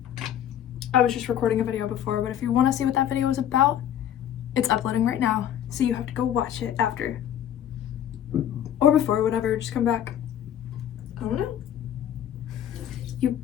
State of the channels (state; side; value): quieter; right; 10.4 dB